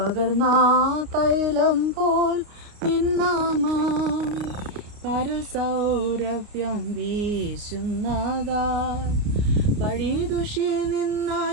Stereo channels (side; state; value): left; late; 29 ms